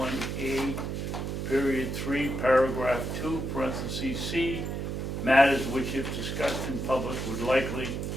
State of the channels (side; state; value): right; noise; hum, 3 dB below the sound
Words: period 3, paragraph 2, parentheses C, matters which if discussed in public would likely